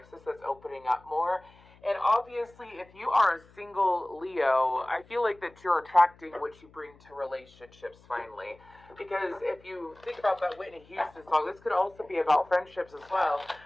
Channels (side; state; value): left; noise; hum, 27 dB below the sound